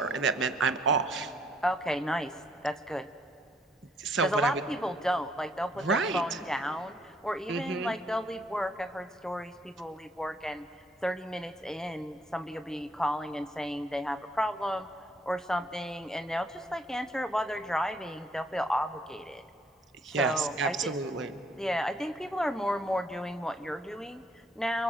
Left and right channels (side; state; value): both; normal; correlation 0.66